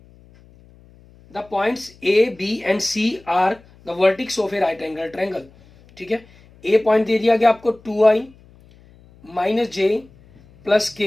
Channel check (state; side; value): noise; left; hum, 27 dB below the sound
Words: the points A, B and C are the vertices of a right angle triangle. ठीक है, A पॉइंट दे दिया गया आपको 2I minus J plus K,